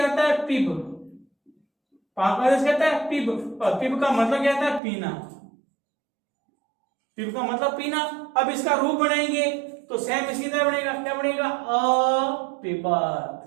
होता है? पिब। पा को आदेश कहता है पिब। पिब का मतलब क्या होता है? पीना। पिब का मतलब पीना। अब इसका रूप बनाएंगे तो सेम इसी तरह बनेगा। क्या बनेगा? अपिबत।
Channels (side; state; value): left; drops out; at 4.8 s